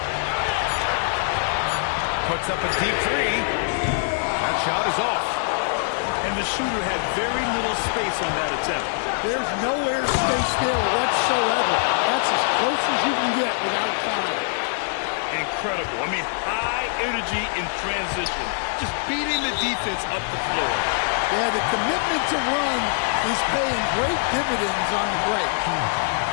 Puts up a deep three. That shot is off. And the shooter had very little space on that attempt. There's no air space there whatsoever. That's as close as you can get without foul. Incredible. I mean, high energy in transition. Just beating the defense up the floor. Yeah, the commitment to run is paying great dividends on the break.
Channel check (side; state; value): right; silent; digital silence